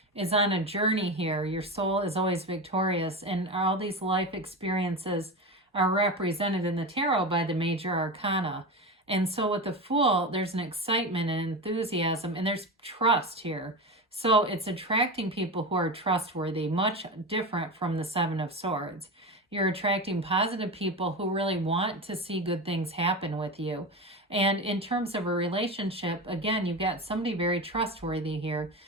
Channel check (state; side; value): normal; both; correlation 0.22